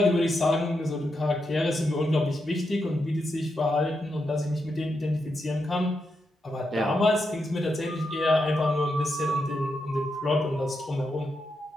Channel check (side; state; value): both; normal; correlation 0.84